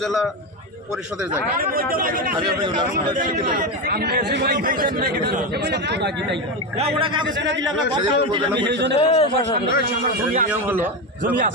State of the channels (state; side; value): normal; both; correlation 0.14